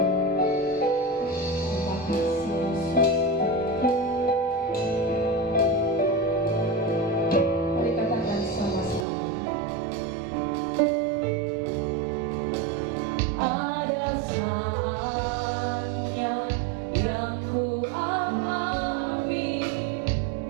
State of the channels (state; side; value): drops out; left; at 9.1 s